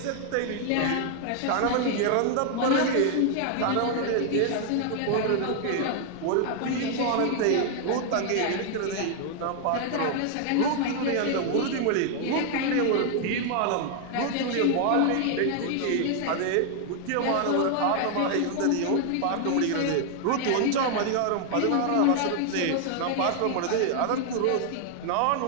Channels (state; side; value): different; both; correlation 0.00